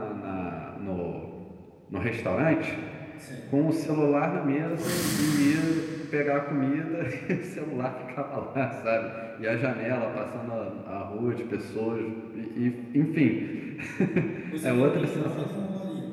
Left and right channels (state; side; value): identical; both; correlation 1.00